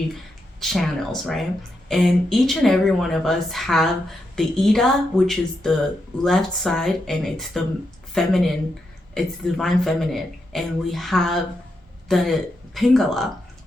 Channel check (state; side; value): normal; both; correlation 0.84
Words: channels, right? And each and every one of us have the Ida, which is the left side, and it's the feminine, it's the divine feminine. And we have the Pingala,